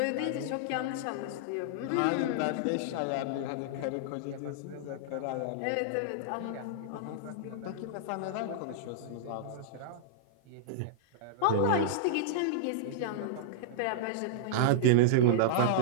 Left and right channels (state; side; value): different; both; correlation -0.02